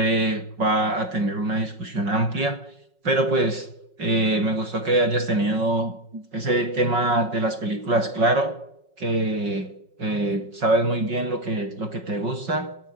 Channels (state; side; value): late; left; 5.4 ms